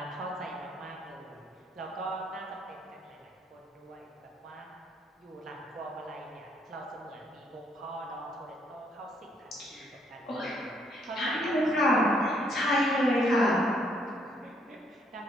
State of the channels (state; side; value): normal; both; correlation 0.69